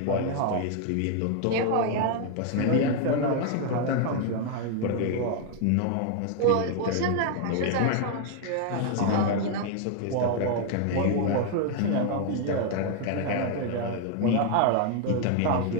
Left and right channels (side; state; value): both; different; correlation 0.00